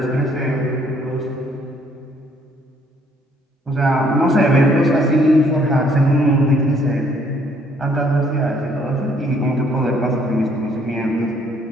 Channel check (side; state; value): both; normal; correlation 0.65